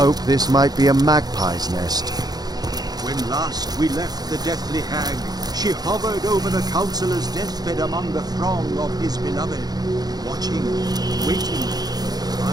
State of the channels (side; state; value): left; late; 0.19 ms